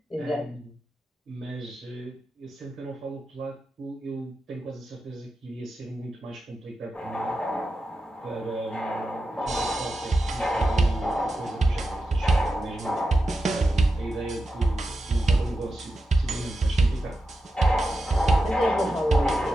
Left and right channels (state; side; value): normal; both; correlation 0.90